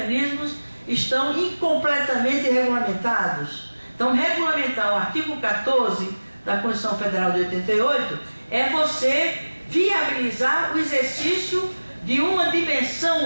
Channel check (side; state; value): both; inverted; correlation -1.00